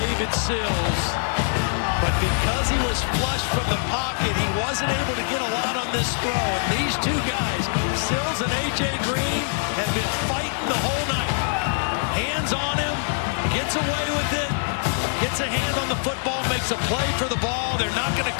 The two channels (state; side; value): silent; right; digital silence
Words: Sills, but because he was flush from the pocket, he wasn't able to get a lot on this throw. And these 2 guys, Sills and A.J. Green, have been fighting the whole night. Hands on him, gets away with it, gets a hand on the football, makes a play for the ball. They're not going to